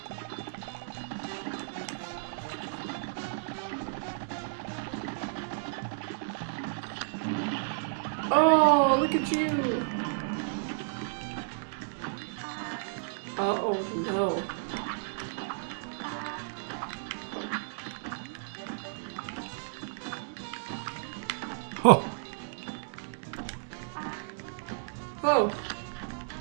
Oh, look at you. Oh no. Oh, Oh.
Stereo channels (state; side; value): silent; left; digital silence